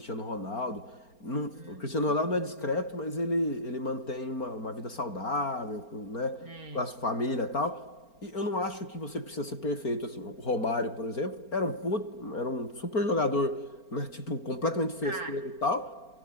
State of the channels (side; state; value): right; late; 4.4 ms